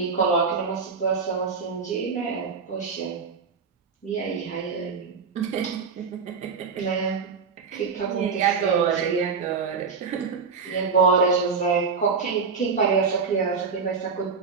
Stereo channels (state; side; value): quieter; left; 5.3 dB